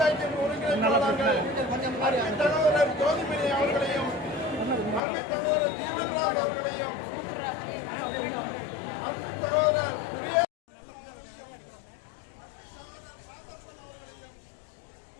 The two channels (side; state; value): right; drops out; at 5.0 s